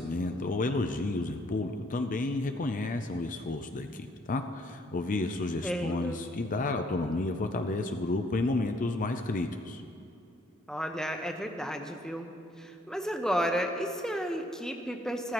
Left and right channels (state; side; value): normal; both; correlation 0.66